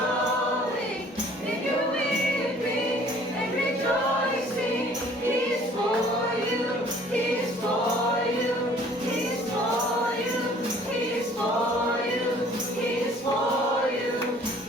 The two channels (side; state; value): both; normal; correlation 0.54